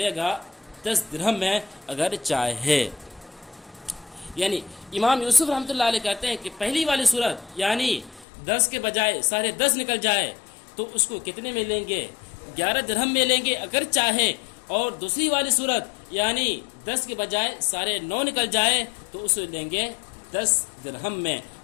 گا 10 درہم میں اگر چاہے۔ یعنی امام یوسف رحمۃ اللہ علیہ کہتے ہیں کہ پہلی والی صورت یعنی 10 کے بجائے 10.5 نکل جائے تو اس کو کتنے میں لیں گے؟ 11 درہم میں لیں گے اگر چاہے، اور دوسری والی صورت یعنی 10 کے بجائے 9.5 نکل جائے تو اسے لیں گے 10 درہم میں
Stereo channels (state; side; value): drops out; right; at 8.2 s